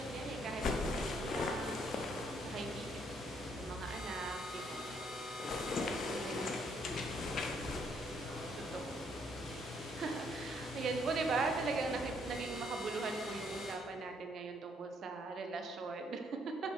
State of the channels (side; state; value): both; normal; correlation 0.69